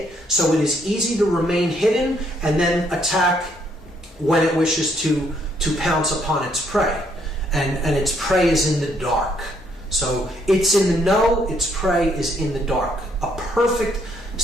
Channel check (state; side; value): normal; both; correlation 0.70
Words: So it is easy to remain hidden and then attack when it wishes to pounce upon its prey. And its prey is in the dark. So it's in the know, its prey is in the dark. A perfect